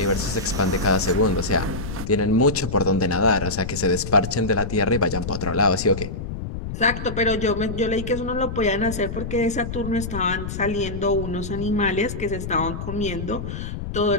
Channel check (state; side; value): noise; left; rumble, 7 dB below the sound